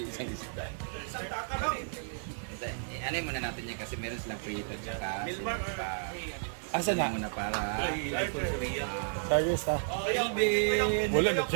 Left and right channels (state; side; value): silent; left; digital silence